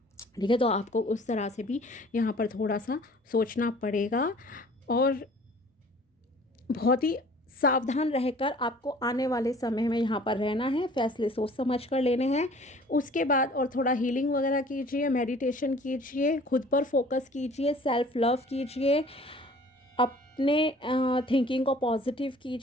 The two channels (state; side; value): normal; both; correlation 0.51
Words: ठीक है। तो आपको उस तरह से भी यहाँ पर थोड़ा सा सोचना पड़ेगा, और बहुत ही सावधान रहकर आपको आने वाले समय में यहाँ पर रहना है, फैसले सोच समझ कर लेने हैं। उसके बाद और थोड़ा हीलिंग वगैरह कीजिए, मेडिटेशन कीजिए, खुद पर फोकस कीजिए, सेल्फ लव कीजिए, अपने थिंकिंग को पॉजिटिव